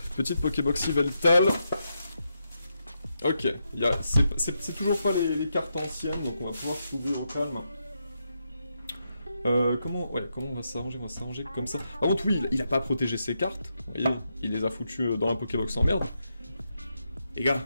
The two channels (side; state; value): both; inverted; correlation -0.84